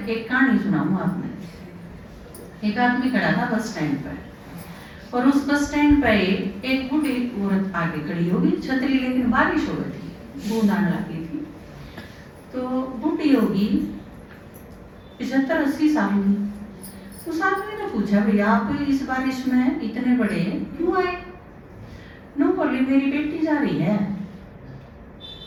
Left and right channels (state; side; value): identical; both; correlation 1.00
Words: कहानी सुनाऊं आपने। एक आदमी खड़ा था बस स्टैंड पर और उस बस स्टैंड पर एक बूढ़ी औरत आगे खड़ी होगी, छतरी लेकिन बारिश हो गई थी, बूंद आने लगी थी। तो बूढ़ी होगी 75-80 साल की। उस आदमी ने पूछा भैया आप इस बारिश में इतने बड़े क्यों आए? नो बोली मेरी बेटी जा रही है